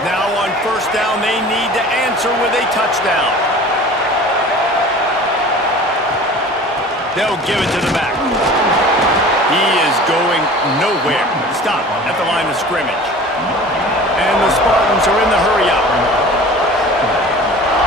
Now on 1st down, they need to answer with a touchdown. They'll give it to the back. He is going nowhere. Stop at the line of scrimmage. And the Spartans are in the hurry-up.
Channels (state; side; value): normal; both; correlation 0.42